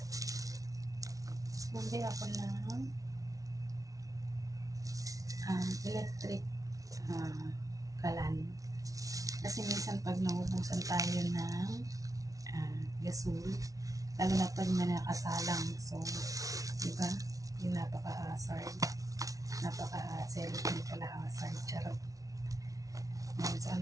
Bumili ako ng electric kalan. Kasi minsan pag naubusan tayo ng gasol, lalo na pag may nakasalang. So, diba? Yung napaka-hazard. Napaka-celebrate pala hazard. Charot. Ngayon, so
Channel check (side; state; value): left; late; 0.17 ms